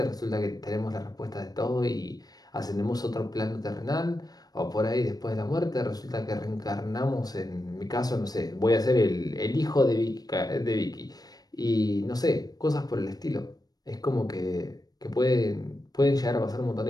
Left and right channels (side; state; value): right; late; 0.19 ms